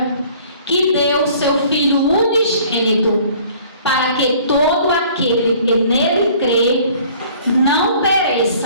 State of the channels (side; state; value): both; inverted; correlation -0.53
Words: que deu seu Filho unigênito, para que todo aquele que nele crê não